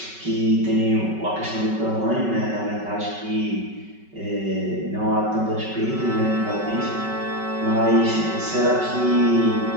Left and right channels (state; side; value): late; left; 5.3 ms